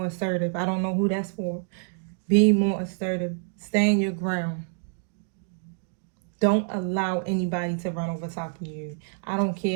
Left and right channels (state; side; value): silent; left; 60 dB below the other